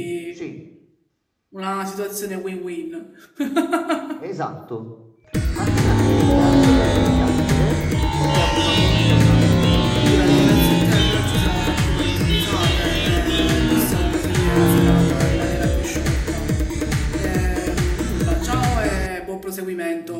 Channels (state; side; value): identical; both; correlation 1.00